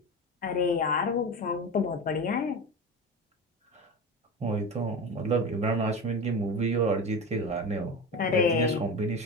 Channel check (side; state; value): both; normal; correlation 0.25